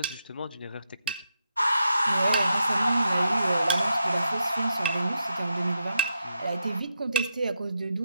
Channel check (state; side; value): inverted; both; correlation -0.82